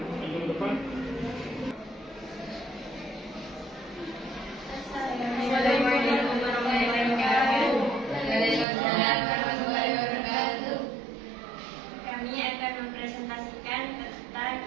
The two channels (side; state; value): left; drops out; at 8.7 s